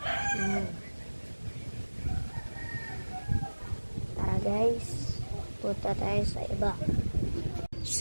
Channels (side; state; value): both; inverted; correlation -1.00